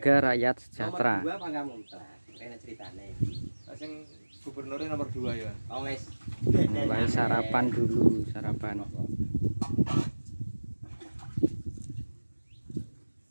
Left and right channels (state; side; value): inverted; both; correlation -1.00